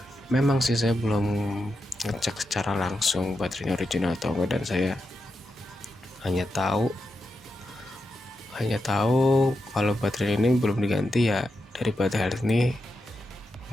Memang sih saya belum ngecek secara langsung baterainya original atau enggak, dan saya hanya tahu kalau baterai ini belum diganti ya dari baterai health ini.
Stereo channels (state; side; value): normal; both; correlation 0.87